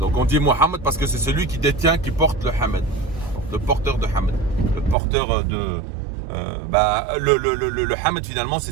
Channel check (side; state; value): left; drops out; at 5.0 s